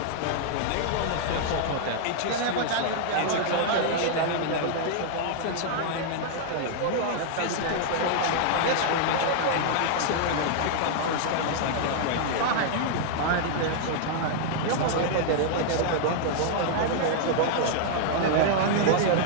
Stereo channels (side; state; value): both; different; correlation -0.01